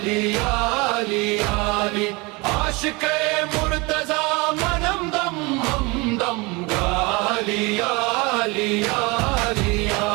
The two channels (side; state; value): left; quieter; 25.9 dB